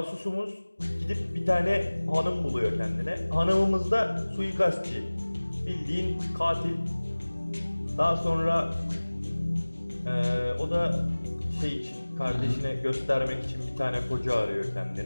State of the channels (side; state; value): both; inverted; correlation -1.00